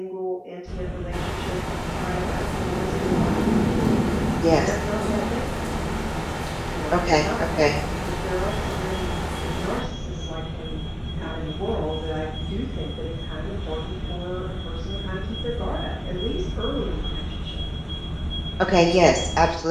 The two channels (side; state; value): both; identical; correlation 1.00